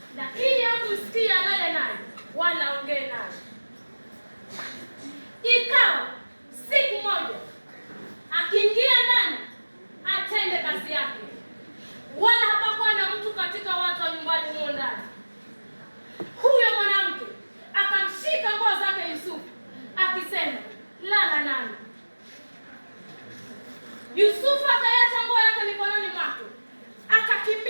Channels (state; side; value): inverted; both; correlation -1.00